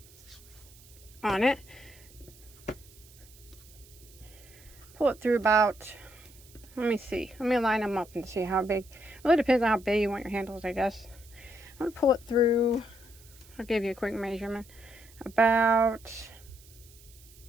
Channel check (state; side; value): noise; right; hiss, 24 dB below the sound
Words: on it. Pull it through about, let me see. Let me line them up and see how big. It really depends on how big you want your handles, I guess. I'm going to pull it through. I'll give you a quick measurement. About